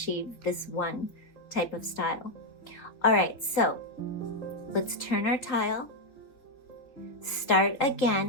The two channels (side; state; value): right; late; 3.9 ms